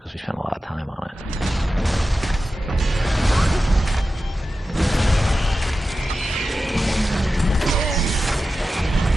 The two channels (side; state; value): both; normal; correlation 0.93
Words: we spent a lot of time on it.